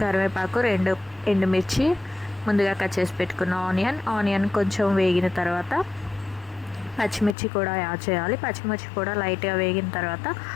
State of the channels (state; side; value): drops out; right; at 7.4 s